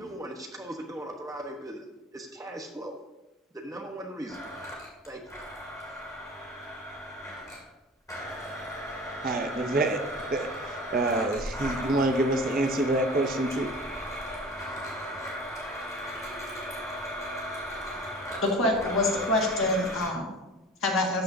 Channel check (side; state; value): both; normal; correlation 0.40